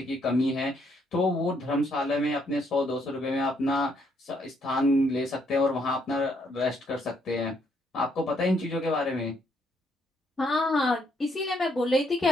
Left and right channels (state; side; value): normal; both; correlation 0.72